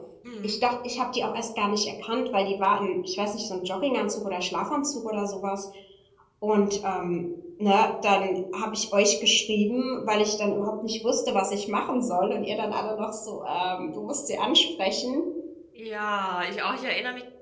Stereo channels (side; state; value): both; identical; correlation 1.00